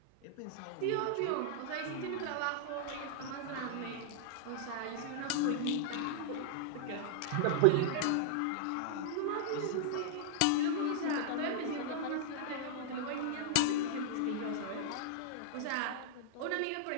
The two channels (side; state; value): both; different; correlation -0.01